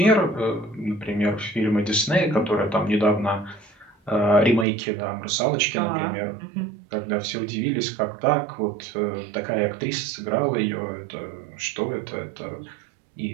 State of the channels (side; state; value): left; drops out; at 4.7 s